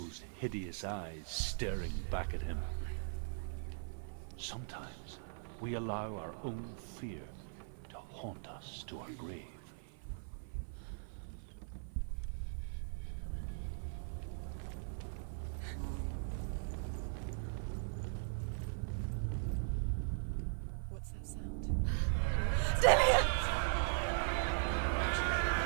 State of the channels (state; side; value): silent; left; 51 dB below the other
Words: hideous eyes staring back at him. Sometimes we allow our own fear to haunt us to our grave. What's that sound? Dillian!